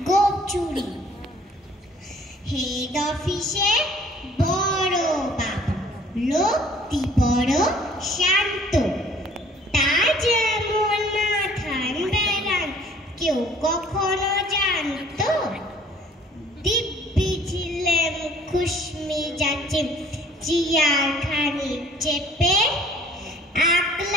গোপ চুরি। হেড অফিসে বড় বাবু, লোকটি বড় শান্ত, তার যেমন মাথান বেড়ান কেউ কখনো জানতো। দিব্যি ছিলেন খুশমি যাচ্ছে চেয়ার খানি চেপে,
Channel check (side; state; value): both; normal; correlation 0.55